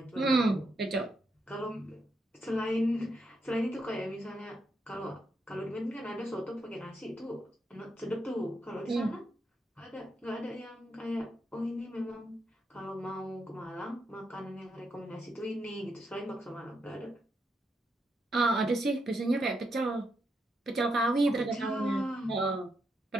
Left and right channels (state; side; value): normal; both; correlation 0.81